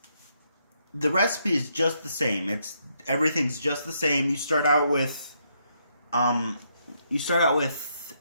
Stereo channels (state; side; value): inverted; both; correlation -0.76